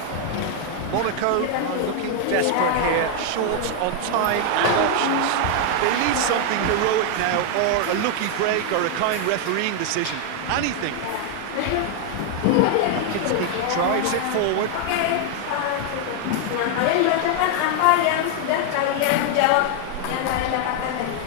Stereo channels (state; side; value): different; both; correlation 0.00